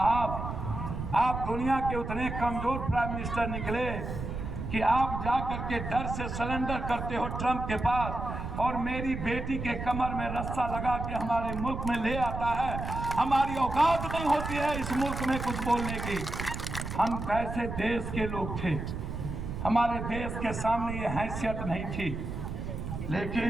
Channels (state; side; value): noise; right; rumble, 5 dB below the sound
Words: आप दुनिया के उतने कमजोर प्राइम मिनिस्टर निकले कि आप जा करके डर से सरेंडर करते हो ट्रंप के पास, और मेरी बेटी के कमर में रस्सा लगा के हमारे मुल्क में ले आता है। हमारी औकात नहीं होती है इस मुल्क में कुछ बोलने की। हम कैसे देश के लोग थे, हमारे देश के सामने ये हैसियत नहीं थी।